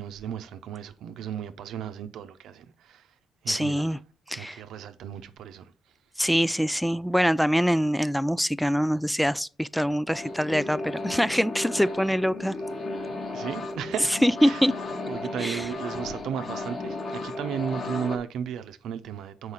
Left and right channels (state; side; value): normal; both; correlation 0.94